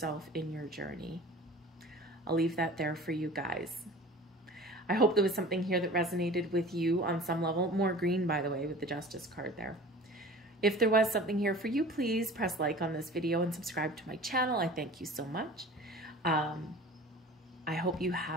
in your journey. I'll leave that there for you guys. I hope there was something here that resonated with you on some level. More green, by the way, with the Justice card there. If there was something here for you, please press like on this video and subscribe to my channel. I thank you so much. I hope you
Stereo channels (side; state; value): both; normal; correlation 0.41